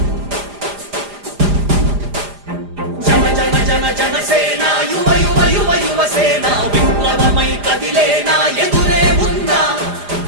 జన జన జన జనసేన యువ యువ యువ యువసేన విప్లవమై కదిలేనా ఎదురే ఉందా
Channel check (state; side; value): late; left; 4.9 ms